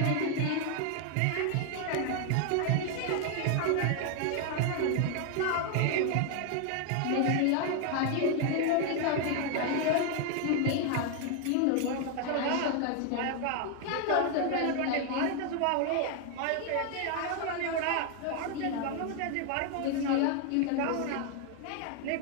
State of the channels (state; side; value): different; both; correlation 0.00